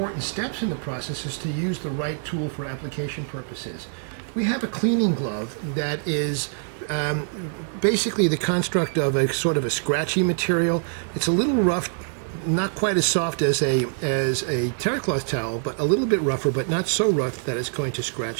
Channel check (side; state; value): left; silent; digital silence